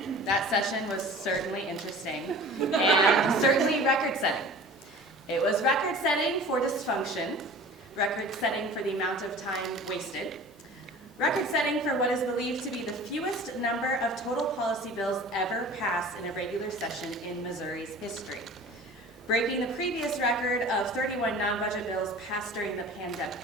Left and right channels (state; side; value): normal; both; correlation 0.41